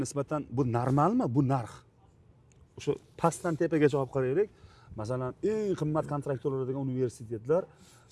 nisbatan bu normalmi? Bu narx. O'sha pastdan tepagacha olib qaraylik. Masalan, eng qimmat kontrakt to'laydigan universitetlar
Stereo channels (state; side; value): identical; both; correlation 1.00